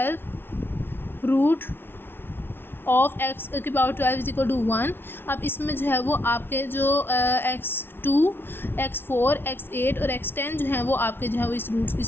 root of x की पावर 12 इज इक्वल टू 1। अब इसमें जो है वो आपके जो x2, x4, x8 और x10 जो है वो आपके जो है वो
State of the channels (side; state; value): right; late; 0.11 ms